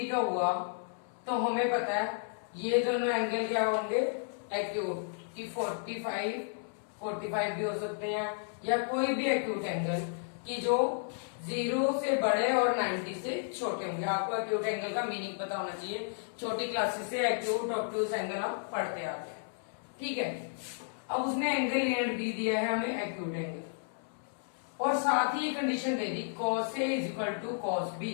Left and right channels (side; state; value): right; silent; 56 dB below the other